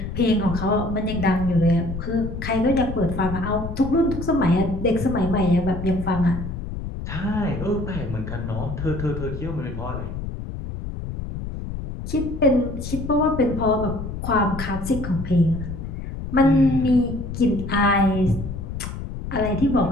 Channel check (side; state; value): left; noise; rumble, 7 dB below the sound